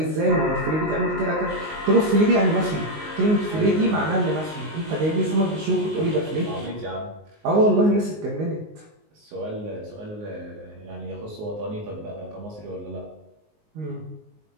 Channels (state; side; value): late; left; 19 ms